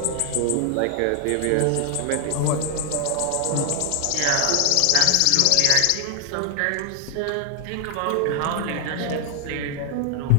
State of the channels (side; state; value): both; different; correlation 0.00